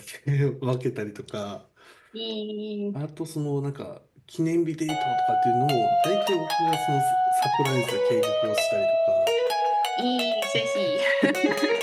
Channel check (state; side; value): identical; both; correlation 1.00